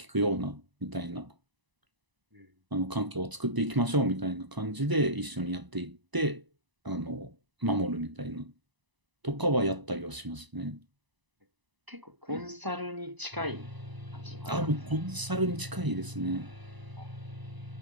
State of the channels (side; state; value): left; late; 1.0 ms